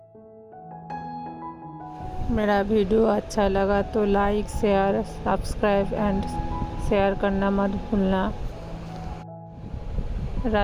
मेरा वीडियो अच्छा लगा तो like, share, subscribe and share करना मत भूलना।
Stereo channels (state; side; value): identical; both; correlation 1.00